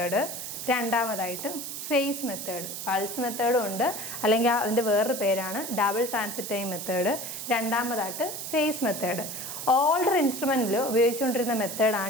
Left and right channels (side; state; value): right; noise; hiss, 7 dB below the sound